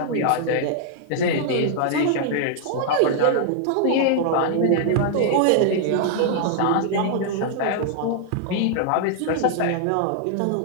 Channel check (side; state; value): both; different; correlation -0.01